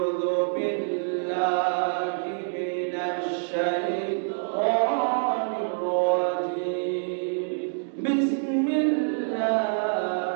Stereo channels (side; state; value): left; silent; digital silence